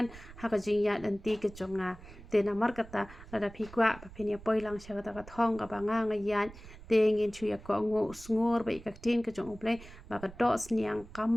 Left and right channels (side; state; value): right; noise; rumble, 18 dB below the sound